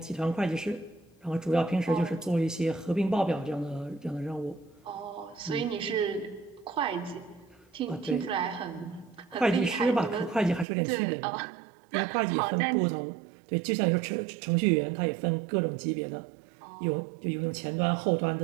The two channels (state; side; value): drops out; left; at 10.7 s